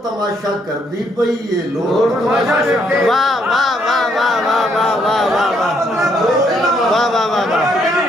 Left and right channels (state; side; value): normal; both; correlation 0.72